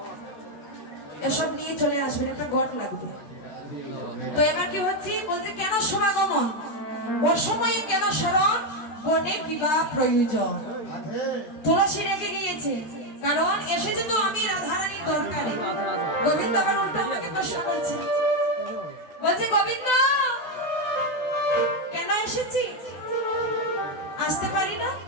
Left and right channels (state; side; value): late; right; 13 ms